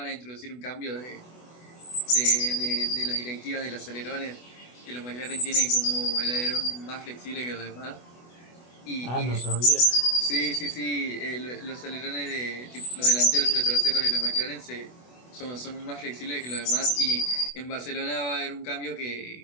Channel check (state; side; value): late; right; 24 ms